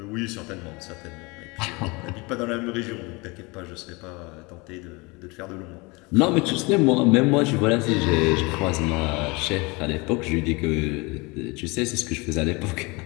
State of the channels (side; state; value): right; quieter; 26.2 dB